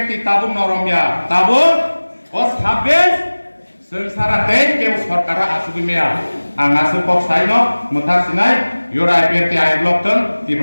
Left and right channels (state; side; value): inverted; both; correlation -1.00